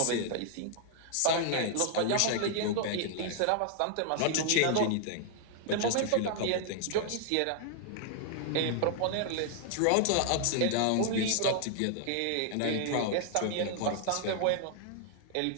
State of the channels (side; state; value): both; different; correlation 0.00